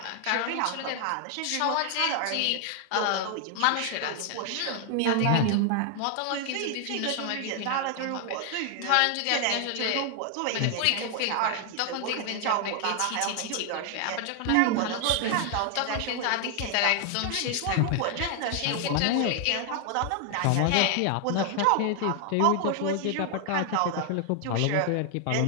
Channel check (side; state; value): both; different; correlation 0.00